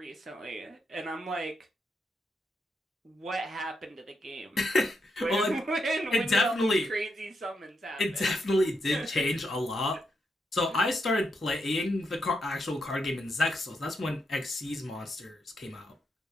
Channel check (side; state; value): both; normal; correlation 0.82